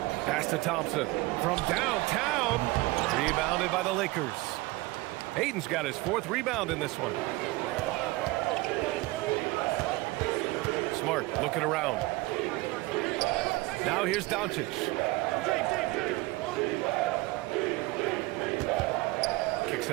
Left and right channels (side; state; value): left; quieter; 21.3 dB